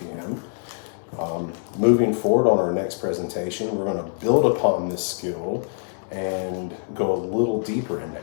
Moving forward on our next presentation, we're going to build upon this skill and go a little deeper into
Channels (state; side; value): silent; right; 62 dB below the other